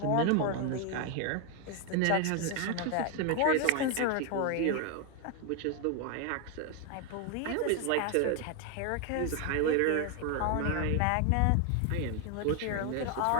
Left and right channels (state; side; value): different; both; correlation 0.01